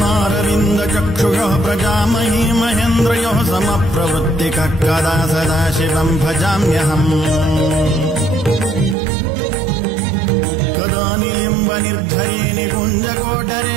प्रजामही महेन्द्रयोः समप्रवृत्तिकः कदा सदा शिवम् भजाम्यहम् कदा निलिम्बनिर्झरे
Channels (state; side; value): drops out; left; at 9.0 s